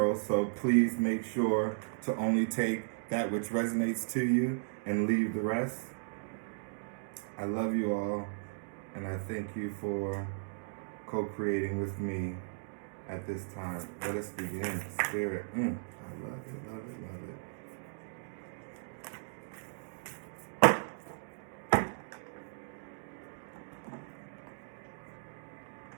so please make sure to only take that which resonates to you and leave the rest. I love you all, and I thank you for co-creating with me at this time. Let us begin. Spirit. I love it, love it, love it.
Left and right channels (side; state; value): left; silent; digital silence